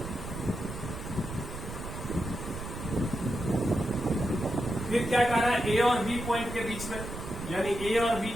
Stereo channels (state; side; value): noise; right; rumble, 8 dB below the sound